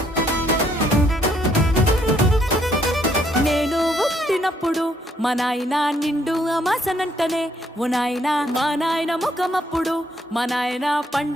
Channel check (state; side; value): normal; both; correlation 0.70